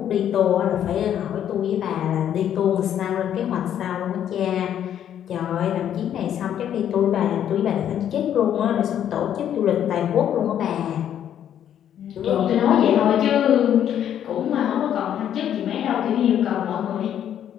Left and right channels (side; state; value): right; quieter; 10.1 dB